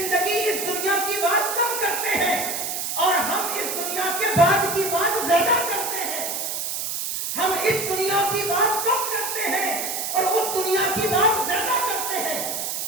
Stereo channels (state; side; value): noise; right; hiss, 3 dB below the sound